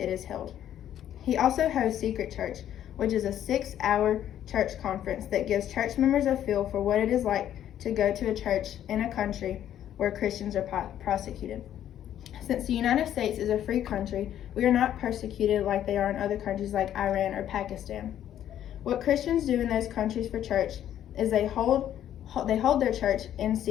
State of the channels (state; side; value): quieter; right; 11.0 dB